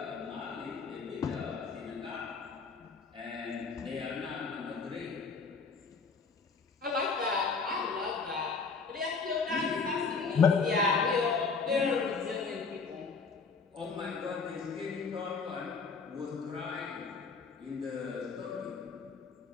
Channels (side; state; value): right; quieter; 4.8 dB